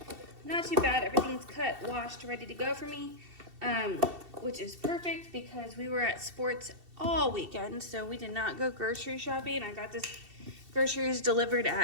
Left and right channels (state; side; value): late; left; 2.7 ms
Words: Not too bad. Everything's cut, washed, ready to go for me. Which is perfect because we were at sports all weekend, so we did not go grocery shopping. I got this groceries delivered